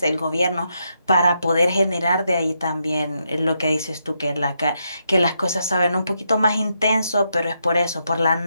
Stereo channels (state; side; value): inverted; both; correlation -0.81